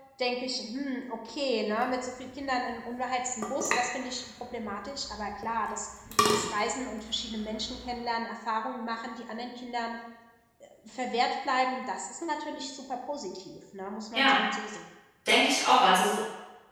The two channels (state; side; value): identical; both; correlation 1.00